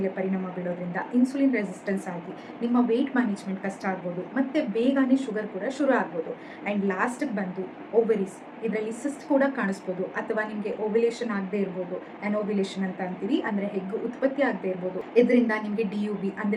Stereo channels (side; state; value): both; identical; correlation 1.00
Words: ಪರಿಣಾಮ ಬೀಳೋದ್ರಿಂದ ಇನ್ಸುಲಿನ್ ರೆಸಿಸ್ಟೆನ್ಸ್ ಆಗಿ ನಿಮ್ಮ ವೆಯ್ಟ್ ಮ್ಯಾನೇಜ್ಮೆಂಟ್ ಕಷ್ಟ ಆಗ್ಬೋದು, ಮತ್ತು ಬೇಗನೆ ಶುಗರ್ ಕೂಡ ಶುರು ಆಗ್ಬೋದು. ಆ್ಯಂಡ್ ಲಾಸ್ಟಿಗೆ ಬಂದು ಓವರೀಸ್, ಇದರಲ್ಲಿ ಸಿಸ್ಟ್ ಕೂಡ ಕಾಣಿಸ್ಬೋದು ಅಥವಾ ನಿಮಗೆ ಓವ್ಯುಲೇಷನ್ ಆಗದೆ ಇರ್ಬೋದು, ಅನೋವ್ಯುಲೇಷನ್ ಅಂತ ಅಂತೀವಿ, ಅಂದರೆ ಹೆಗ್ಗು ಉತ್ಪತ್ತಿ ಆಗದೆ ಇರ್ಬೋದು. ಇದರಿಂದ ನಿಮಗೆ DUB